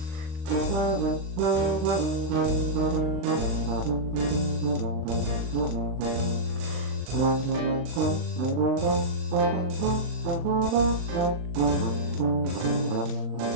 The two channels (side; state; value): left; late; 39 ms